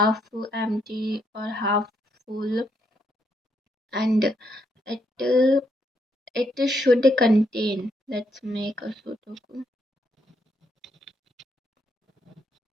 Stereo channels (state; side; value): normal; both; correlation 0.76